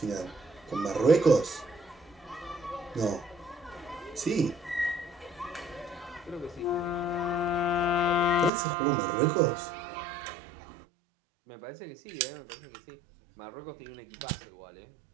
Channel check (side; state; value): left; drops out; at 8.5 s